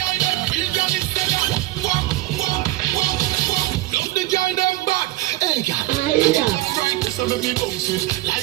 so let me bounce it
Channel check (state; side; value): quieter; left; 17.5 dB